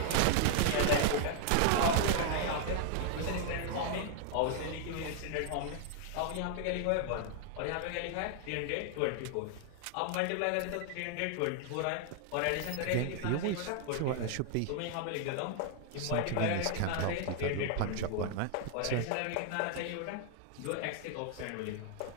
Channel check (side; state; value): both; different; correlation 0.00